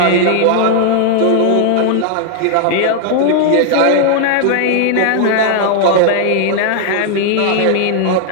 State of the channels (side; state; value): both; different; correlation 0.00